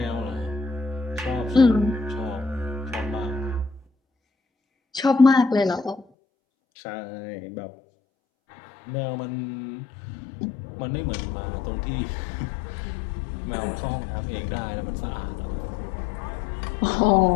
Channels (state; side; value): drops out; right; at 6.1 s